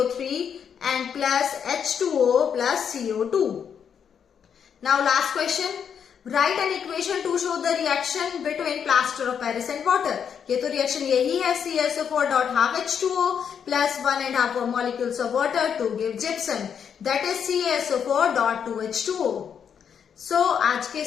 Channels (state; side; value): quieter; right; 7.6 dB